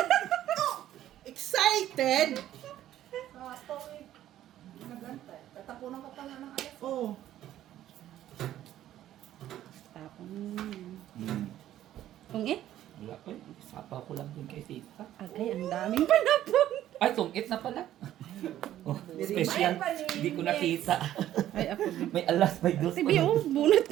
Excited. Sapaw eh. Nagantay. Tatapunan ka pa nga ng alas. Oh, Tapon. Hmm. Tungit? Wala ko. Sapaw ko lang dun kay tita. Agay, ang daming panapon. Ay, tungit na pala. Oh, special. Hindi ko nakita. Ay, ako din. May alas, may dos. Tibi, oh, bunot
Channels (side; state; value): left; quieter; 12.5 dB